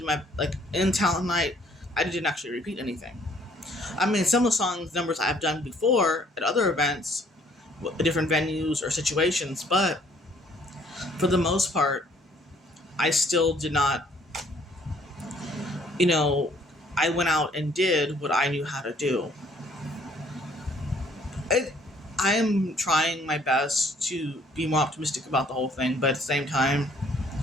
in talent night, I didn't actually repeat anything. I mean, some of the songs numbers I've done before at other events, different venues or situations, but for the most part, I still did not, I went out and did what I knew how to do. I am trying my best to be more optimistic about the whole thing, but at the same time,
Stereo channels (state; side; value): normal; both; correlation 0.61